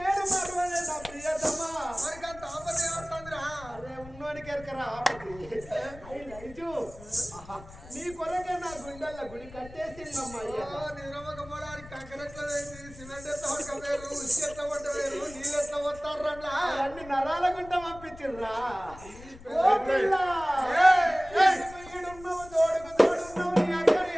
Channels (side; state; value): left; noise; rumble, 18 dB below the sound